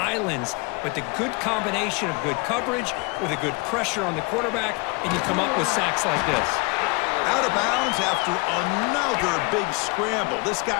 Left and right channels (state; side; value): quieter; right; 28.7 dB